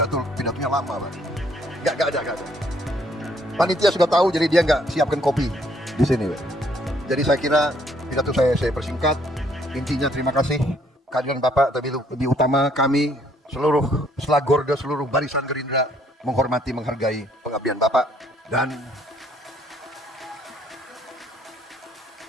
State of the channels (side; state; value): both; normal; correlation 0.66